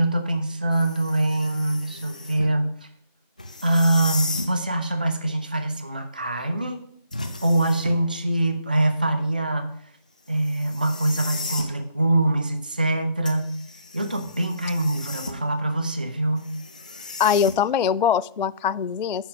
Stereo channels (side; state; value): both; inverted; correlation -0.68